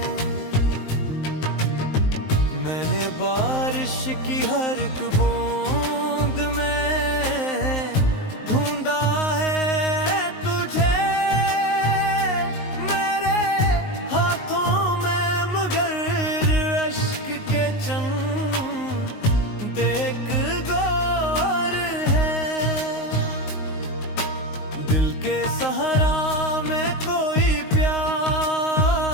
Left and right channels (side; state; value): right; late; 19 ms